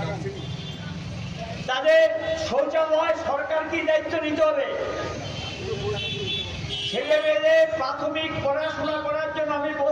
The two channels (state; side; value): identical; both; correlation 1.00